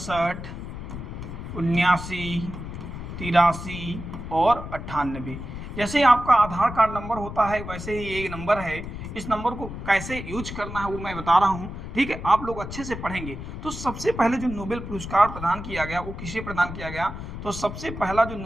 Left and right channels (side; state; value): left; noise; rumble, 9 dB below the sound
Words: 83 और 98। जैसे आपका आधार कार्ड नंबर होता है वैसे ही ये नंबर है। इस नंबर को कैसे यूज करना है वो मैं बता रहा हूँ। ठीक है, आप लोग अच्छे से पढ़ेंगे। तो सबसे पहले जो नोबेल पुरस्कार प्रदान किया गया वो किसे प्रदान किया गया? तो सबसे पहला जो